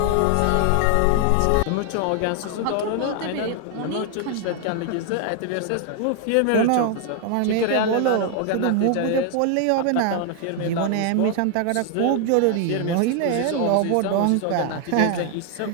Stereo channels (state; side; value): different; both; correlation 0.00